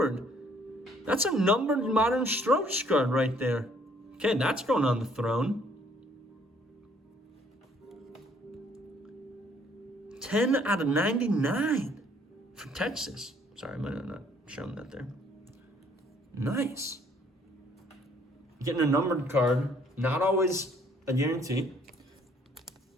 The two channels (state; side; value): normal; both; correlation 0.62